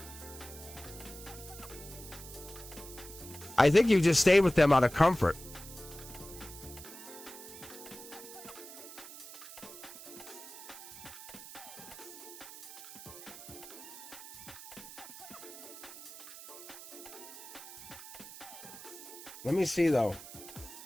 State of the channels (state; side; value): noise; right; hiss, 14 dB below the sound